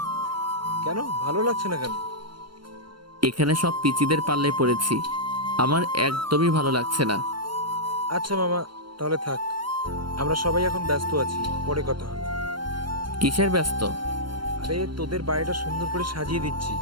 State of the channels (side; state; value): left; late; 0.72 ms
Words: কেন ভালো লাগছে না কেন? এখানে সব পিচিদের পাল্লায় পড়েছি, আমার একদমই ভালো লাগছে না। আচ্ছা মামা, তাহলে থাক, আমরা সবাই এখন ব্যস্ত আছি, পরে কথা হবে। কিসের ব্যস্ত? আরে তোদের বাড়িটা সুন্দর করে সাজিয়ে দিচ্ছি